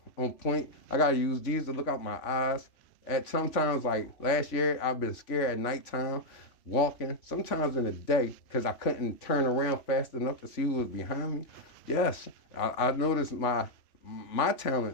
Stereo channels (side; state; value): right; late; 3.5 ms